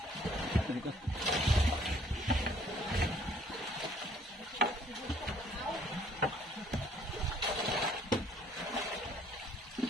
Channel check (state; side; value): normal; both; correlation 0.60